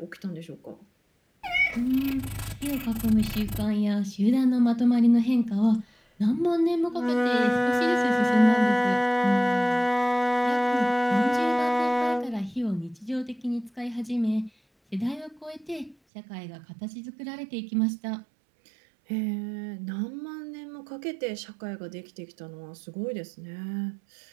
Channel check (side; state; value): left; drops out; at 16.0 s